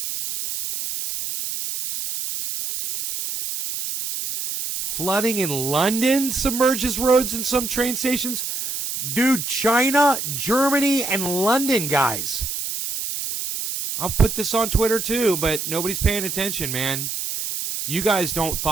Flooding in London submerges roads and some train stations. Dude, China, Germany, and London, guys. I'll put this on Twitter too, but nobody's paying attention, man. You guys don't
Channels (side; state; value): right; noise; hiss, 4 dB below the sound